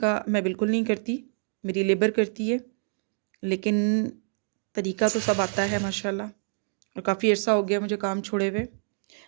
मैं बिल्कुल नहीं करती, मेरी लेबर करती है, लेकिन तरीका तो सब आता है माशाल्लाह, और काफ़ी अर्सा हो गया मुझे काम छोड़े हुए।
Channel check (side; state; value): left; silent; digital silence